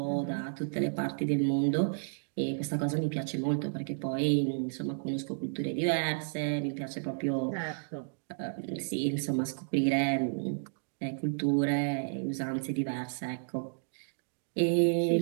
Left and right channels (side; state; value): left; silent; digital silence